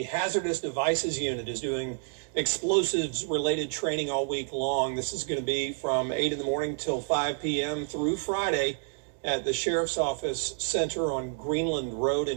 Hazardous Devices Unit is doing explosives-related training all week long. This is going to be from 8 in the morning till 5 p.m. through Friday at the Sheriff's Office Center on Greenland Road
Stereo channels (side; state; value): left; silent; 59 dB below the other